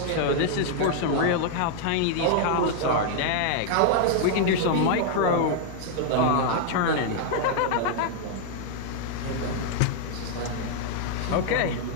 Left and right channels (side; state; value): both; different; correlation 0.00